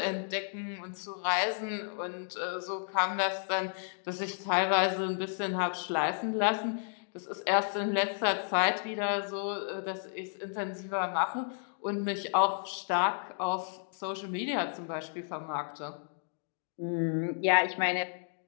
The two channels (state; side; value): silent; right; digital silence